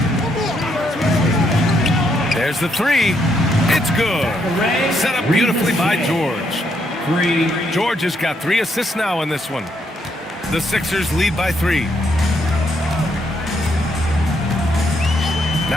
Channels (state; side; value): normal; both; correlation 0.75